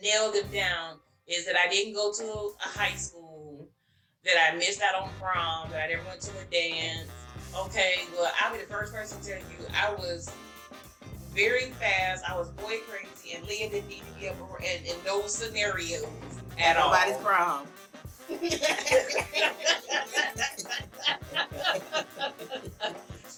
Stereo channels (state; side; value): identical; both; correlation 1.00